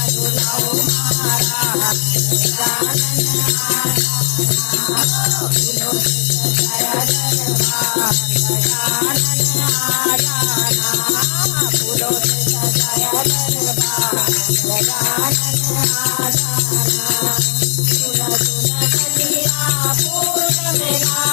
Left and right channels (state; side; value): silent; right; digital silence